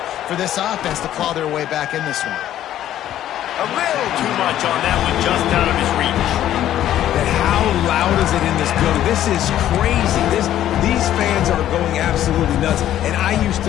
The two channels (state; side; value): quieter; right; 12.1 dB